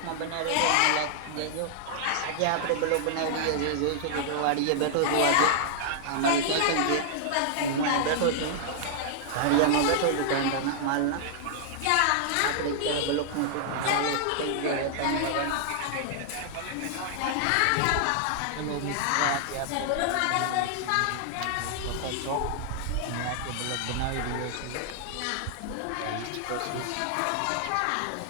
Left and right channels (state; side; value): different; both; correlation -0.01